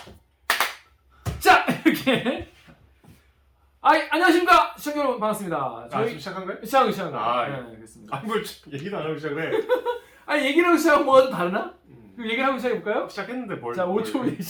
자 이렇게 안녕하십니까 시청자 여러분 반갑습니다. 지금 시작한 거예요? 시작한 거. 아, 네, 그렇습니다. 뭘 얘기도 안 하고 시작을 해. 아니 얘기를 하고 시작하면 뭐가 좀 다르나? 그럼 얘기를 하고 시작해볼까요? 시작했는데 뭘? 자 5초 후에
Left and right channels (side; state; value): both; identical; correlation 1.00